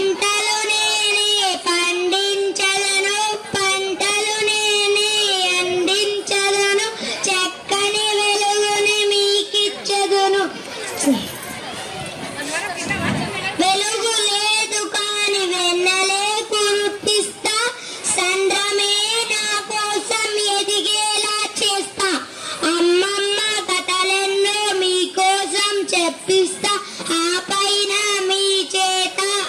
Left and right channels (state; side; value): identical; both; correlation 1.00